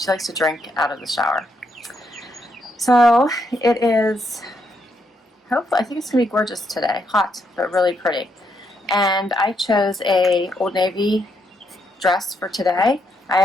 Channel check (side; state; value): both; normal; correlation 0.77